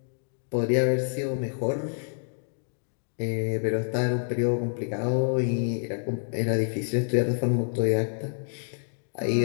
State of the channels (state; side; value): silent; right; digital silence